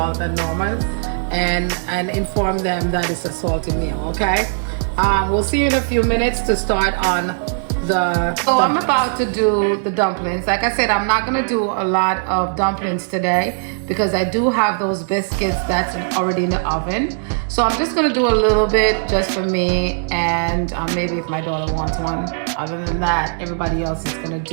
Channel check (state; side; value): silent; left; 67 dB below the other